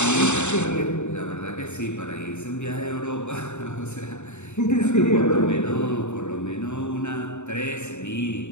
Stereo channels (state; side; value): late; right; 0.83 ms